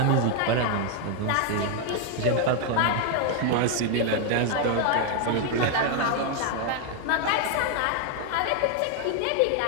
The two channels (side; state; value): both; different; correlation 0.01